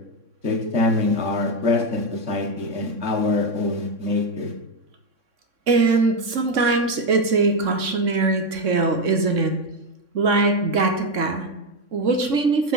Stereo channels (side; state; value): left; late; 3.6 ms